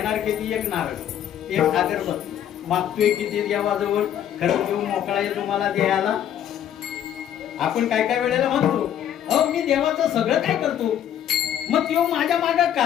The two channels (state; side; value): quieter; right; 10.3 dB